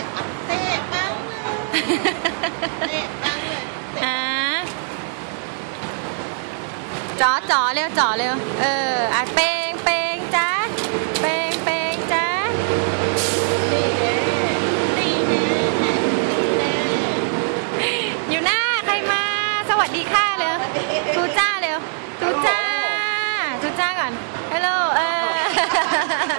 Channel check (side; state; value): left; silent; digital silence